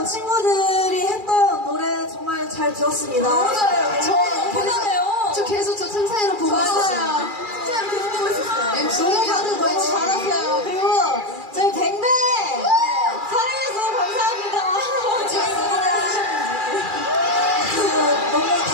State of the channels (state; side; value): late; left; 2.4 ms